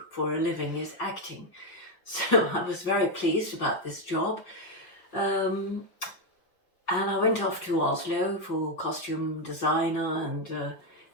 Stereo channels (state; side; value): late; right; 5.4 ms